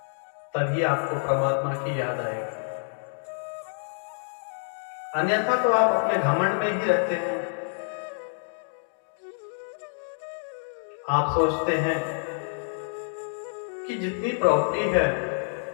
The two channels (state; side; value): silent; right; digital silence